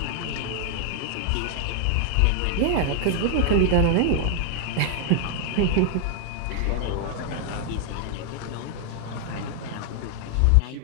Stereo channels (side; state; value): both; different; correlation 0.00